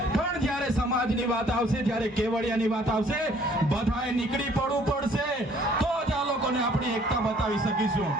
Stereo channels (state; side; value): normal; both; correlation 0.59